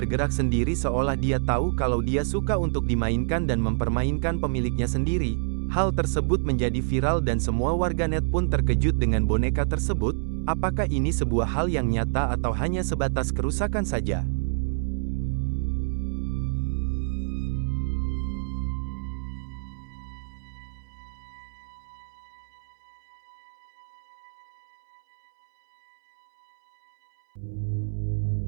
sendiri seolah dia tahu kalau dia suka untuk dimainkan dan mempermainkan pemiliknya sendiri. Hal tersebut menjadi viral dan semua warganet pun terkejut dengan boneka tersebut. Apakah ini sebuah hal yang nyata atau hanya sebatas kerusakan saja?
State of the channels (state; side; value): silent; left; 60 dB below the other